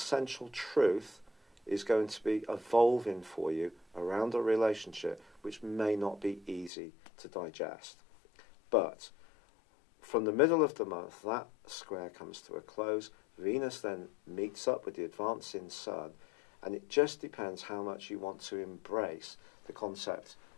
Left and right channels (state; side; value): drops out; right; at 6.7 s